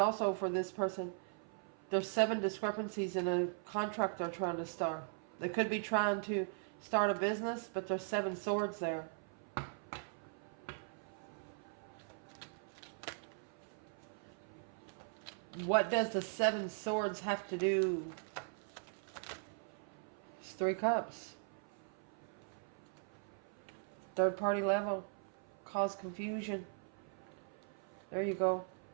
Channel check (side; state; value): left; silent; 51 dB below the other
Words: for this person. There's 7 discrepancies in a contract they're trying to start. They could be trying to start a business, but there's 7 swords there. What does the 7 swords have to do? It's 3 cups. Third party level. Cause confusion. There you go.